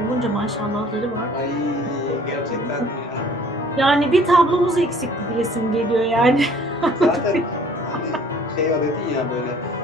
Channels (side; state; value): both; normal; correlation 0.54